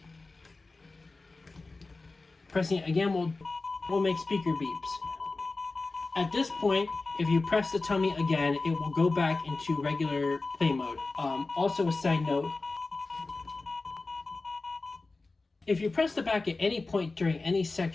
Pressing it again will make speaker beeps. At this point, if you press the tummy again, it will go back into regular play mode. Also a side note, if you press the back at any point during any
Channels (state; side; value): quieter; right; 3.5 dB